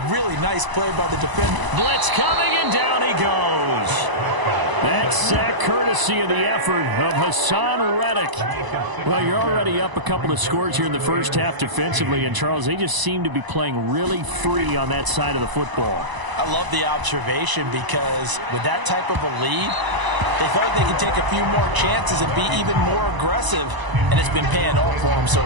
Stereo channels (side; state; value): left; late; 1.0 ms